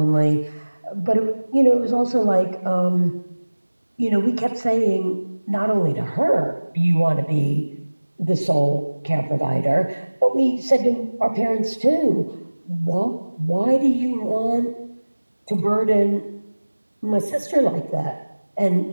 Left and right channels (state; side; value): inverted; both; correlation -1.00